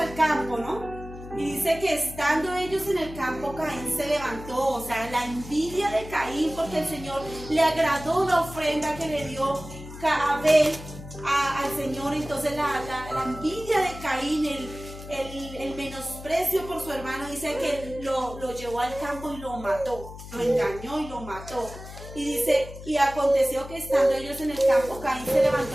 campo, ¿no? Y dice que estando ellos en el campo, Caín se levantó, o sea, la envidia de Caín, porque el Señor le agradó la ofrenda que le dio Abel al Señor. Entonces la envidia de Caín, el menosprecio por su hermano, dice que lo llevó al campo y lo mató, lo engañó y lo mató. Y dice, y aconteció que estando ellos en el campo, Caín se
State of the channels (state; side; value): noise; left; hum, 13 dB below the sound